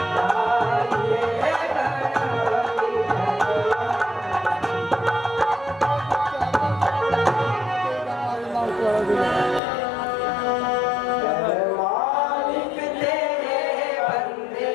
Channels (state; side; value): drops out; right; at 9.6 s